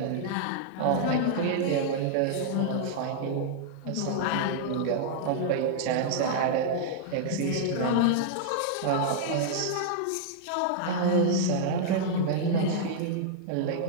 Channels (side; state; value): both; different; correlation -0.01